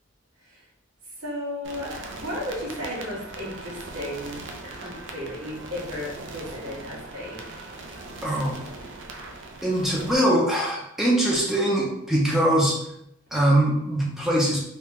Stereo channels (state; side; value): normal; both; correlation 0.58